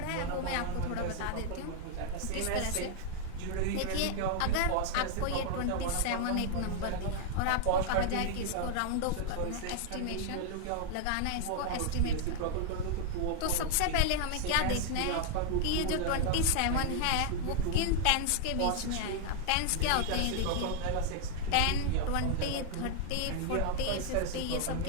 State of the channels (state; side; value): different; both; correlation 0.00